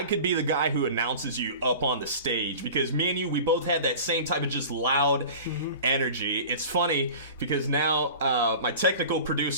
could be the guy who announces you up on the stage, because me and you, we both had that same type of just loud energy. It's funny because now my technical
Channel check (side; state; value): both; inverted; correlation -0.38